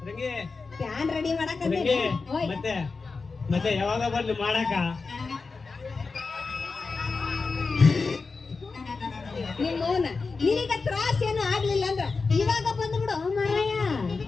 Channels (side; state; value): right; quieter; 4.3 dB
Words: ರಂಗಿ ಫ್ಯಾನ್ ರೆಡಿ ಮಾಡಾಕ ಮತ್ತೆ ಮತ್ತೆ ಯಾವಾಗ ಬಂದು ಮಾಡಾಕ? ನಿಮ್ಮವನ ನಿನಗ ತ್ರಾಸ ಏನು ಆಗ್ಲಿಲ್ಲ ಅಂದ್ರ ಇವಾಗ ಬಂದ್ಬಿಡು ಮಾರಾಯ.